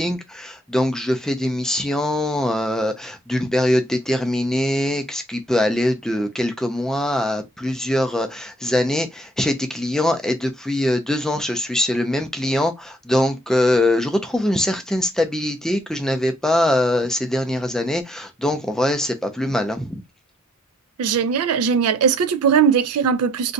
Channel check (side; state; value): both; normal; correlation 0.66